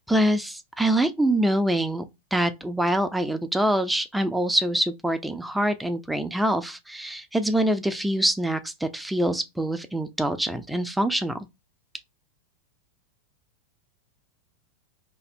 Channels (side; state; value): both; normal; correlation 0.83